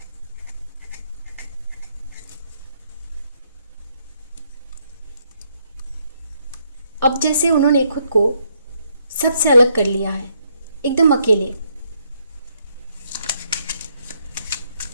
अब जैसे उन्होंने खुद को सबसे अलग कर लिया है, एकदम अकेले।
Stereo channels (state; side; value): inverted; both; correlation -0.73